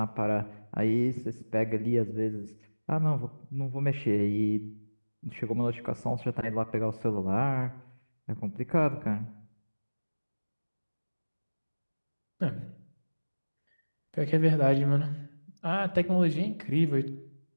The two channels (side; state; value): both; inverted; correlation -1.00